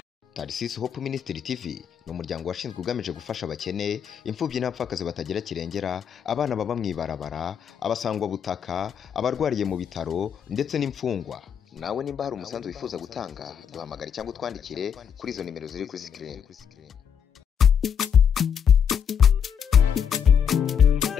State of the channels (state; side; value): quieter; right; 7.8 dB